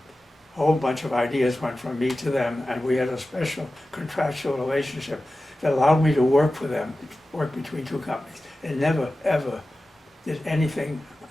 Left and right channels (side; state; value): both; normal; correlation 0.95